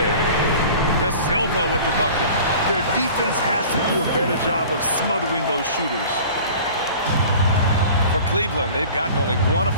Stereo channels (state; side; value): inverted; both; correlation -0.43